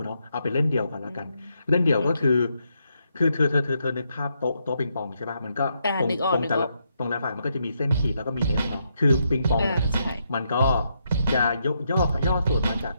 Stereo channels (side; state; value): both; inverted; correlation -0.79